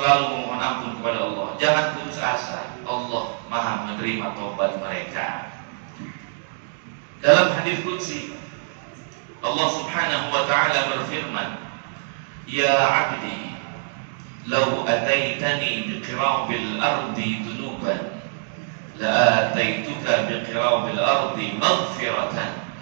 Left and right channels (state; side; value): silent; left; digital silence